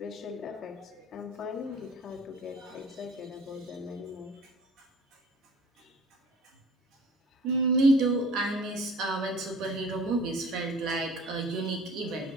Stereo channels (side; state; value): both; normal; correlation 0.46